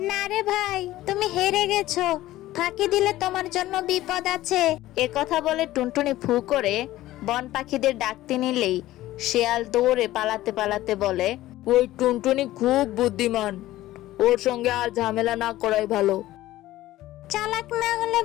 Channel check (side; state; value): right; quieter; 15.7 dB